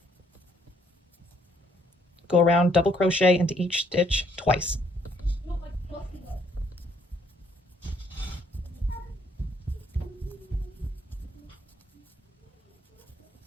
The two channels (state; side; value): normal; both; correlation 0.67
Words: go around, double crochet into each stitch twice.